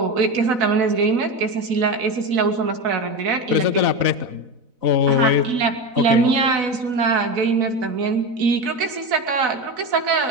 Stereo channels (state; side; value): late; left; 4.0 ms